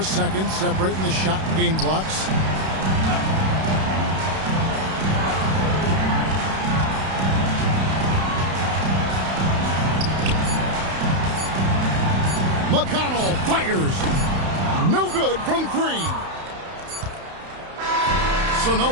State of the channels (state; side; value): late; left; 31 ms